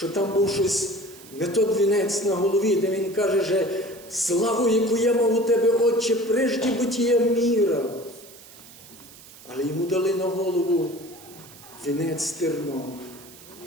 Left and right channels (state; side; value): noise; right; hiss, 20 dB below the sound